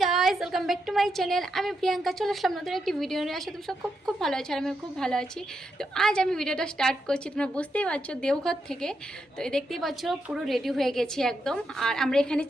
Guys, welcome back to my channel. আমি প্রিয়াঙ্কা চলে আসলাম নতুন একটি ভিডিও নিয়ে। আসলে তুমি সব খুব খুব ভালো আছো আর আমি খুব ভালো আছি। তো আজ আমি ভিডিওটা স্টার্ট করছি, তোমরা বুঝতেই পারছো দেওঘর থেকে। তো এই দেখতেই পাচ্ছ পুরো রেডি হয়ে গেছি একদম। আর আমরা এখানে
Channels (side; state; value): both; normal; correlation 0.83